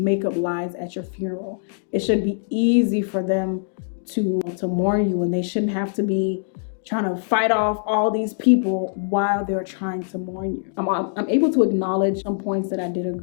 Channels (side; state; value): right; silent; digital silence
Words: up lies at your funeral. It should be easy for them to mourn you, and they shouldn't have to be trying to fight off all these people while they're trying to mourn you. I'm able to acknowledge some points that I did